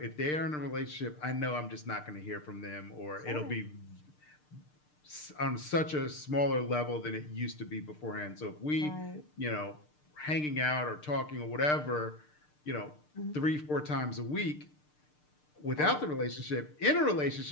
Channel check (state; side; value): late; right; 6.6 ms